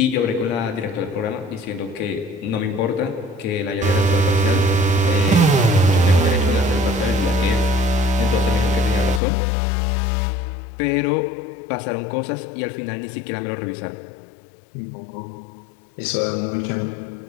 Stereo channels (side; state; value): right; drops out; at 9.2 s